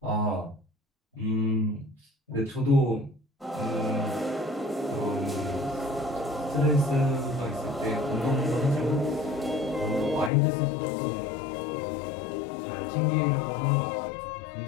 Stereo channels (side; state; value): right; drops out; at 10.3 s